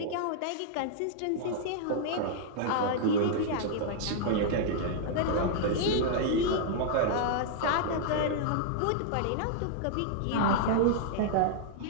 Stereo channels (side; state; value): both; different; correlation -0.01